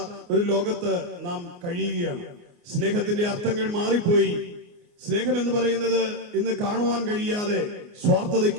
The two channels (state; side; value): late; left; 29 ms